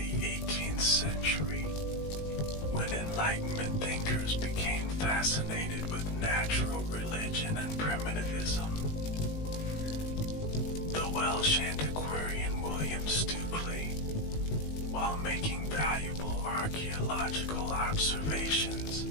18th century, when Enlightenment thinkers became fascinated with natural religion and primitivism. The Welsh antiquarian William Stukeley, while making valuable archaeological observations,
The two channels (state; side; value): late; right; 19 ms